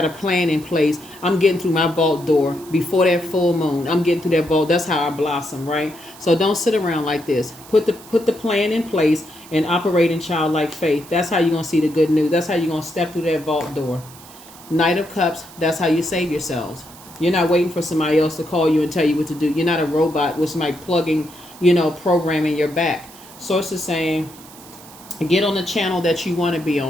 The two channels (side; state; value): right; noise; hiss, 20 dB below the sound